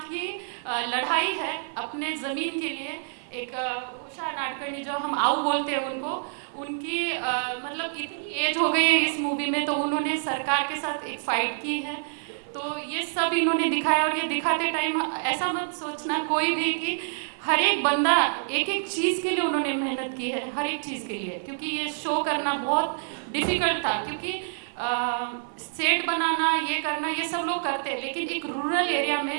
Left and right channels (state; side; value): silent; left; 56 dB below the other